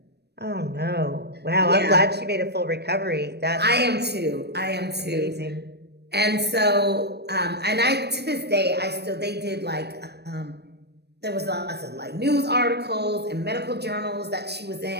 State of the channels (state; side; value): late; left; 0.48 ms